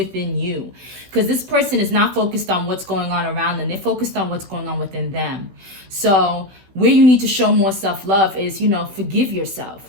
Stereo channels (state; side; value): late; left; 16 ms